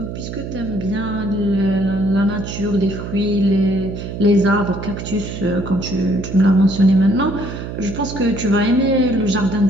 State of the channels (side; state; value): right; noise; hum, 8 dB below the sound